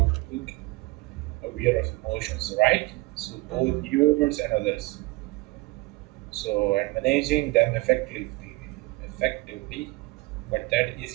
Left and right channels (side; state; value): left; quieter; 22.3 dB